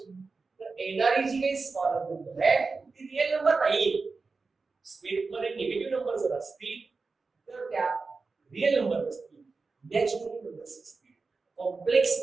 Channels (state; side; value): quieter; left; 4.2 dB